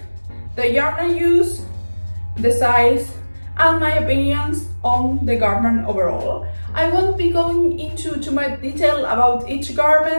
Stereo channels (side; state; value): both; inverted; correlation -1.00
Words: the yarn I use, the size, and my opinions on the garment overall. I won't be going into too much detail about each